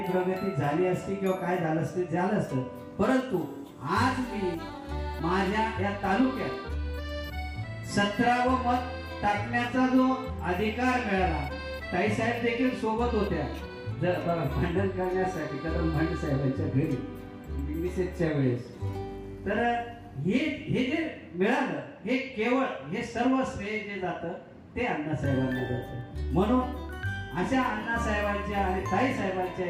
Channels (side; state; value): both; identical; correlation 1.00